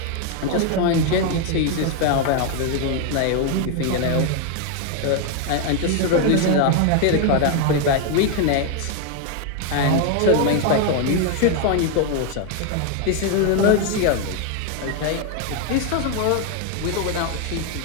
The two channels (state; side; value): different; both; correlation 0.01